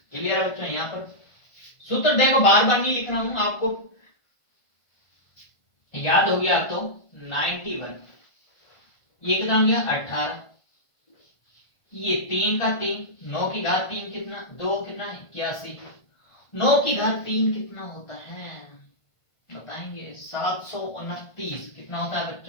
क्लियर है बच्चों। यहां पर सूत्र देखो बार बार नहीं लिख रहा हूं, आपको याद हो गया। तो 91 ये कितना हो गया 18, ये 3 का 3, 9 की घात 3 कितना 2 कितना 81, 9 की घात 3 कितना होता है बताएंगे 729, कितना होता है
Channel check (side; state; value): right; late; 1.5 ms